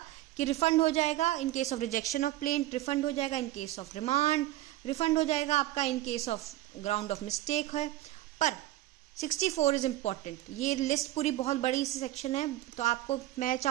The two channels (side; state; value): left; quieter; 15.9 dB